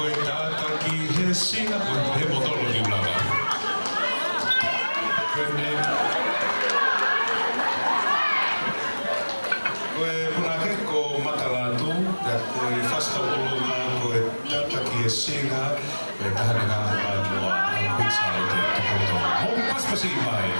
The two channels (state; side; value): inverted; both; correlation -1.00